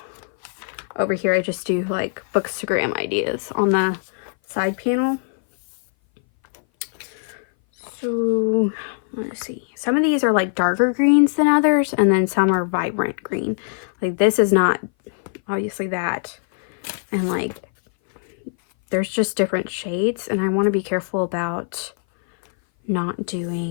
over here I just do like Bookstagram ideas on the side panel. So let's see, some of these are like darker greens than others, and then some are vibrant green. Like this is not obviously that, and like there's just different shades, and I want to be careful about not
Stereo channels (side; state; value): right; silent; 59 dB below the other